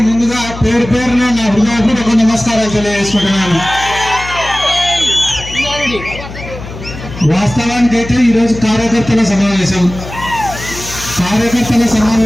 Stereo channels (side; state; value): left; noise; hum, 12 dB below the sound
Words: ముందుగా పేరు పేరున నా హృదయపూర్వక నమస్కారాలు తెలియజేసుకుంటున్నాను. వాస్తవానికైతే ఈరోజు కార్యకర్తల